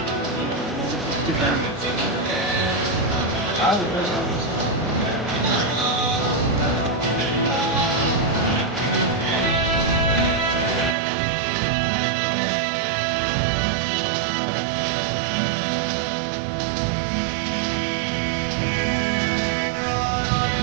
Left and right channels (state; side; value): drops out; left; at 11.0 s